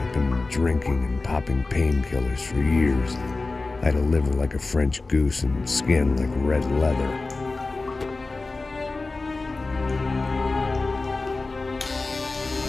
been drinking and popping painkillers for years. I had a liver like a French goose and skin like red leather.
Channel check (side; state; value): right; quieter; 3.5 dB